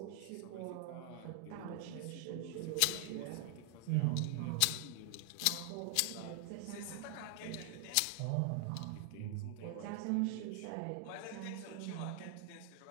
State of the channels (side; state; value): both; different; correlation 0.00